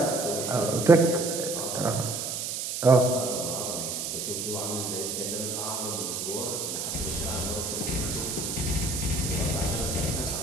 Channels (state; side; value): noise; right; hiss, 3 dB below the sound